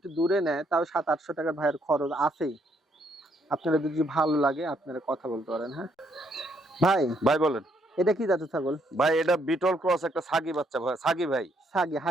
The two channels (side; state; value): both; normal; correlation 0.71